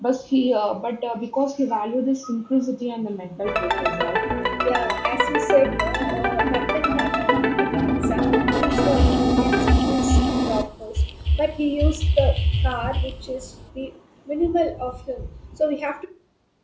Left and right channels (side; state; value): both; identical; correlation 1.00